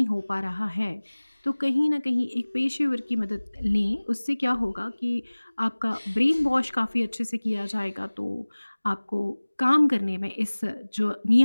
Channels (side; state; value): both; inverted; correlation -1.00